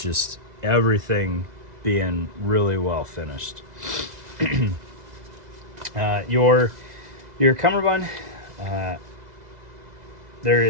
everything being really well finished. Your cummerbund,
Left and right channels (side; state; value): left; late; 2.0 ms